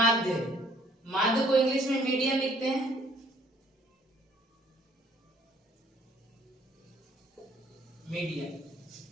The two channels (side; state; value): both; normal; correlation 0.61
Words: माध्य को इंग्लिश में मीडियन लिखते हैं, मीडियन,